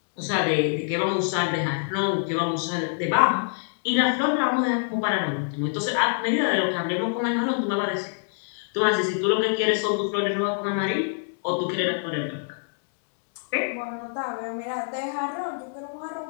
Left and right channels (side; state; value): right; silent; digital silence